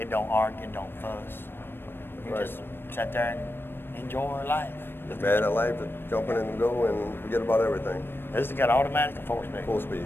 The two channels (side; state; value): right; late; 0.10 ms